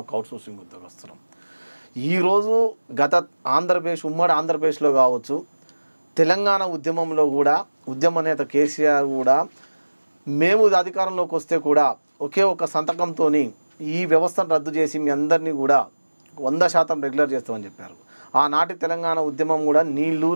అవుట్సోర్సింగ్ ఉద్యోగస్తులం. ఈరోజు ఉమ్మడి ఆంధ్రప్రదేశ్లో కావచ్చు, తెలంగాణ ఉద్యమంలో కూడా ఉద్యమ నేత కేసీఆర్ కూడా మేము అధికారంలోకి వస్తే కూడా ఒకే ఒక సంతకంతో ఈ వ్యవస్థను రద్దు చేసి మీ అందరినీ కూడా 100% రెగ్యులర్ చేస్తామని చెప్పారు. ఆనాటి తెలంగాణ ఉద్యమం కూడా నీళ్లు,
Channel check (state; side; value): inverted; both; correlation -1.00